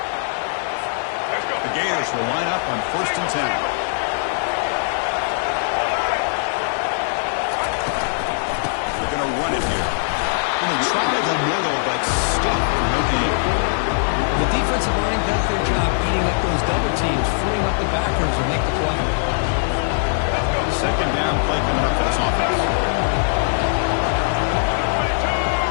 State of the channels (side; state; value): right; silent; digital silence